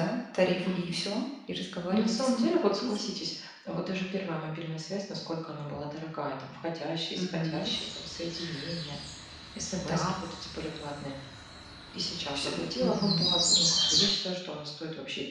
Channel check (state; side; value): identical; both; correlation 1.00